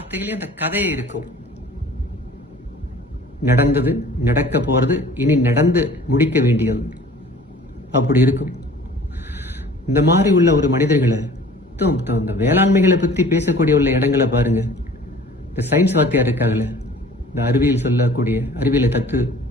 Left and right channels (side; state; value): both; normal; correlation 0.48